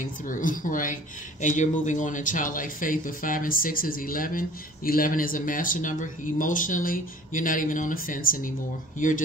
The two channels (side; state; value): both; normal; correlation 0.47